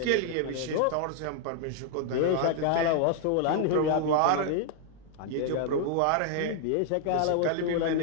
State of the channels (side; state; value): both; different; correlation 0.00